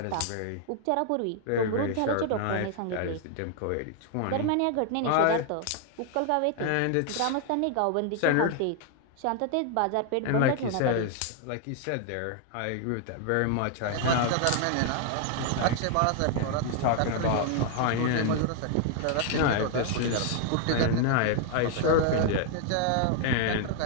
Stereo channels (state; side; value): different; both; correlation 0.00